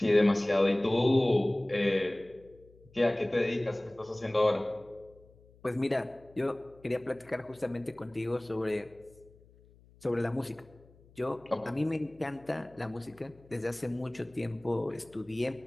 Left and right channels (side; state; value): left; noise; hum, 27 dB below the sound